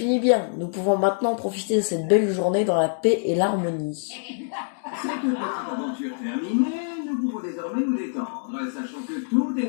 bien. Nous pouvons maintenant profiter de cette belle journée dans la paix et l'harmonie. Cette petite aventure terminée, nous pouvons désormais nous détendre, sachant que tout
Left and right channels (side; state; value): right; silent; digital silence